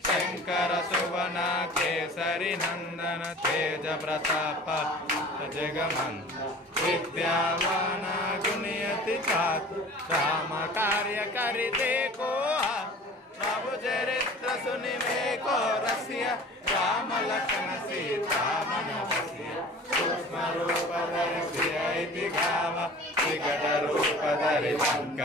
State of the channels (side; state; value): both; normal; correlation 0.43